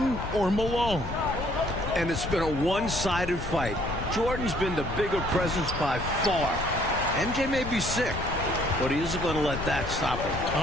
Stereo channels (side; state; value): left; noise; rumble, 7 dB below the sound